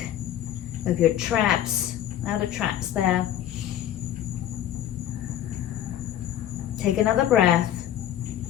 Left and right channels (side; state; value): right; quieter; 11.4 dB